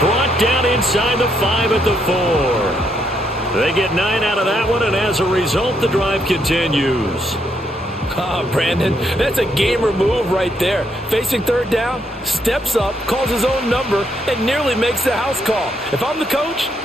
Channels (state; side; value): normal; both; correlation 0.75